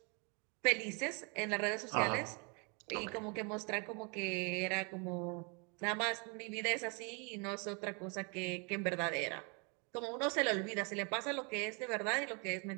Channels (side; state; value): left; quieter; 33.6 dB